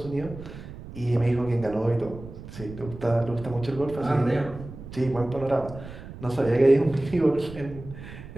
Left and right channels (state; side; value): noise; right; rumble, 14 dB below the sound